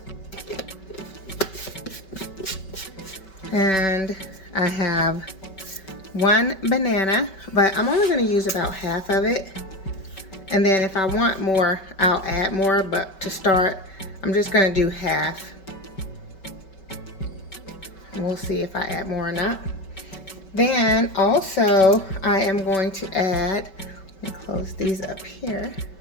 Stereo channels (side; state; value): right; late; 5.2 ms